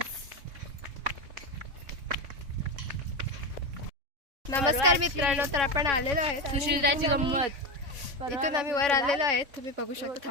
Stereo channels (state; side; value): late; left; 3.6 ms